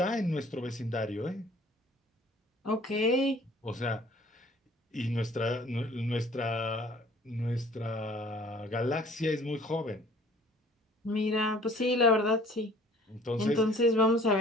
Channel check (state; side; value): normal; both; correlation 0.53